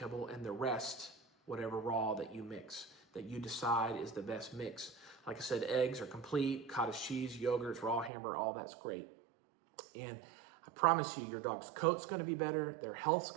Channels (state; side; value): drops out; left; at 8.1 s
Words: and the rest, whatever raw that you mix, that you decide is the best mix. Like I said, eggs are complete, cottage cheese, yogurts, raw hamburger, all that's great. And I promise you, your dog's coat's gonna be better, their health's